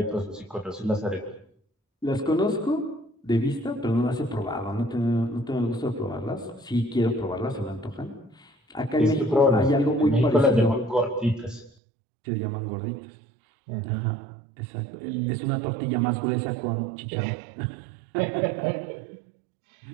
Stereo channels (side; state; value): left; drops out; at 11.7 s